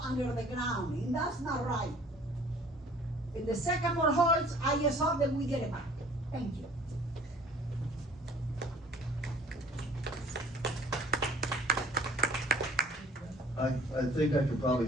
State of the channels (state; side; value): normal; both; correlation 0.51